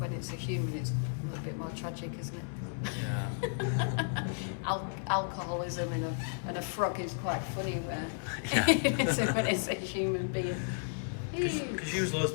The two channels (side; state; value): right; silent; 55 dB below the other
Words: it's a human it's a little bit more tragic, isn't it? Yeah. Alcoholism and a frog is quite funny where Yeah. when it's a human being. Because you use loads